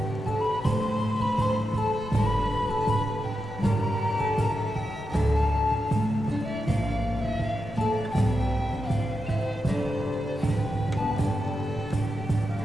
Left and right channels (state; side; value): normal; both; correlation 0.88